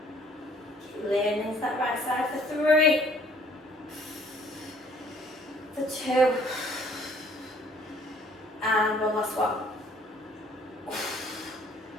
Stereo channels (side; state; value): both; normal; correlation 0.59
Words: Keep leaning into that right side. For 3. For 2. And one last one.